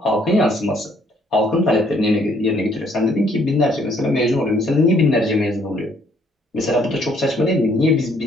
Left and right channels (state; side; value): normal; both; correlation 0.65